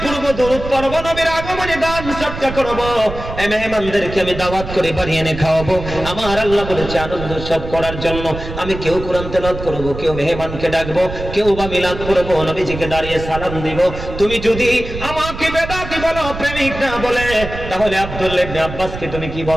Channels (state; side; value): noise; right; rumble, 9 dB below the sound